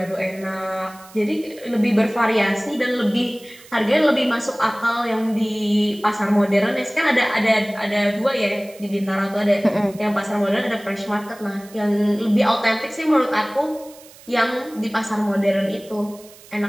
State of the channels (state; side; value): noise; right; hiss, 22 dB below the sound